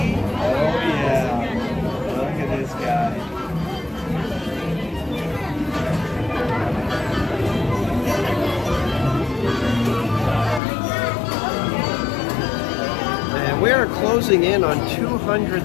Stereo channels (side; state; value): right; drops out; at 10.6 s